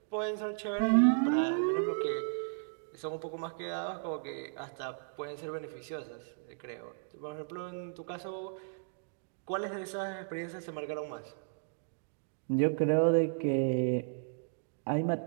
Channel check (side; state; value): left; silent; digital silence